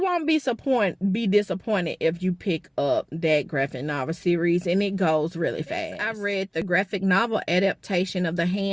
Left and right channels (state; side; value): identical; both; correlation 1.00